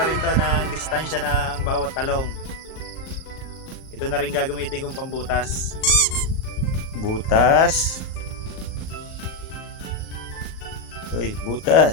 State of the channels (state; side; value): late; right; 38 ms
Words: rin to ng distansya ng bawat talong. Ito na rin gagamitin kong pambutas. Butas.